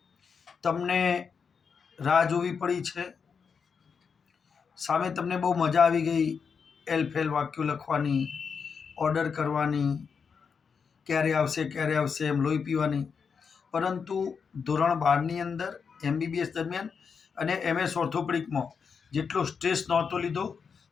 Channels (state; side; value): quieter; right; 6.0 dB